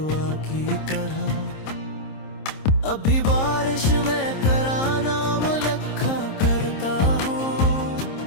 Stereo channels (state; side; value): late; right; 26 ms